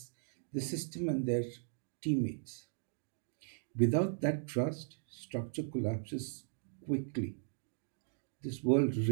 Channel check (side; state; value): left; silent; digital silence